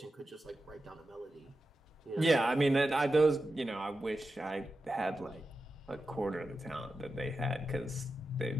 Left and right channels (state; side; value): normal; both; correlation 0.91